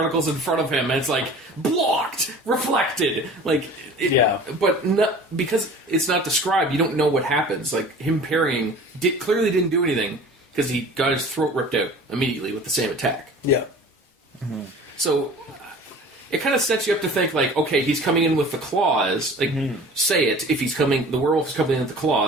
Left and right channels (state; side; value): normal; both; correlation 0.43